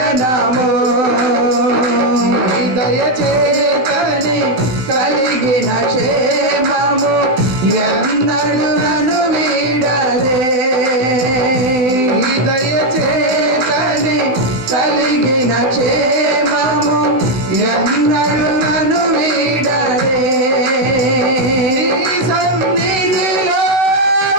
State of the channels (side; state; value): left; late; 16 ms